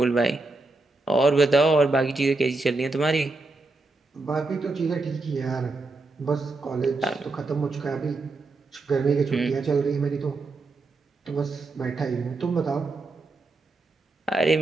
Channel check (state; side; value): quieter; left; 3.4 dB